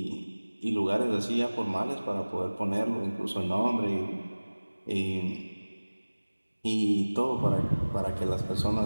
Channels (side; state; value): both; inverted; correlation -1.00